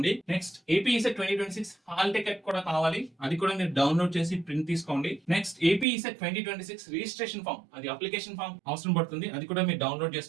Next AP ECET 2026 hall ticket కూడా కావాలి, అది కూడా మీరు డౌన్లోడ్ చేసి ప్రింట్ తీసుకోండి. Next AP ECET 2026 registration form, అది అప్లికేషన్ ఫామ్ అవసరం పడుతుంది, అది కూడా మీరు డౌన్లోడ్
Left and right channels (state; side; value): drops out; left; at 5.9 s